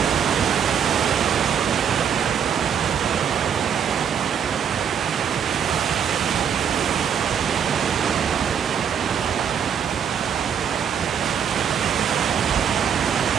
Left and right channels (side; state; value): left; quieter; 7.9 dB